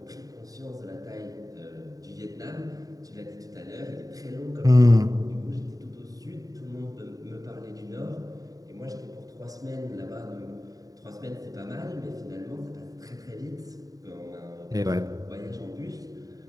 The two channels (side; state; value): left; late; 0.18 ms